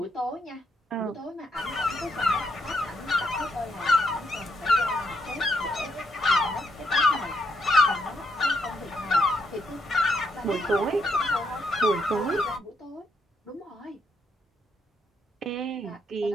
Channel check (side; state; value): both; normal; correlation 0.77